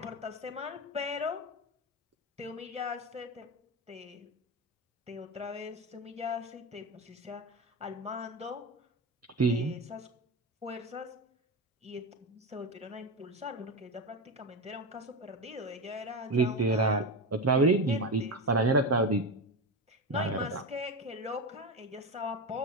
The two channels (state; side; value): normal; both; correlation 0.18